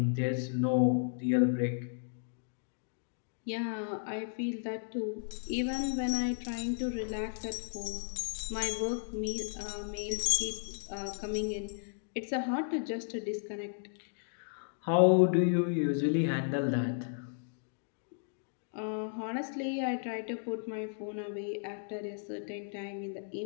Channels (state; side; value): silent; right; digital silence